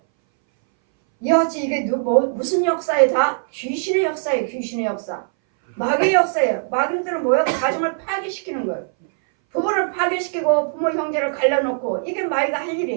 이어지 이게 무슨 역사에 다? 귀신의 역사예요. 귀신의 역사. 마귀의 역사예요. 마귀들은 뭐예요? 가정을 파괴시키는 거예요. 부부를 파괴시키고 부모 형제를 갈라놓고 이게 마귀가 할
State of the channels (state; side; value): silent; left; 62 dB below the other